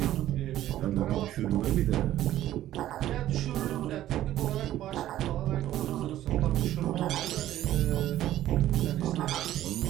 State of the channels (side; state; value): left; quieter; 13.3 dB